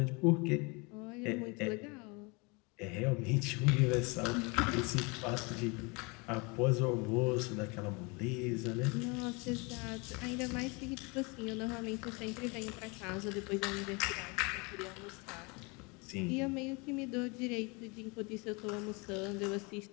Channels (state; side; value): quieter; right; 29.2 dB